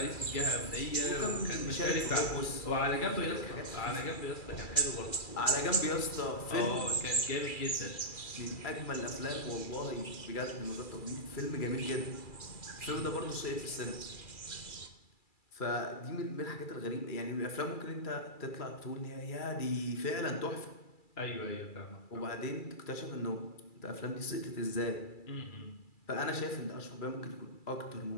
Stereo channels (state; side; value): late; right; 2.3 ms